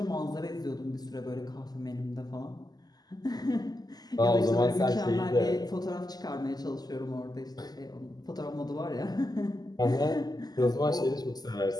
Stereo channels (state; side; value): late; right; 0.19 ms